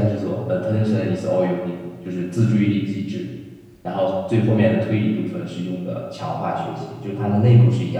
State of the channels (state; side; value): identical; both; correlation 1.00